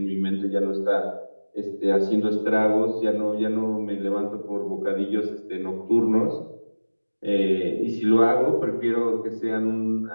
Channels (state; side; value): inverted; both; correlation -1.00